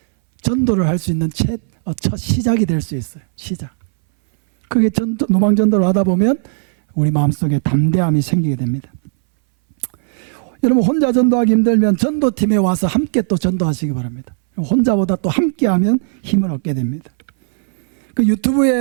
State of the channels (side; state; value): left; silent; 65 dB below the other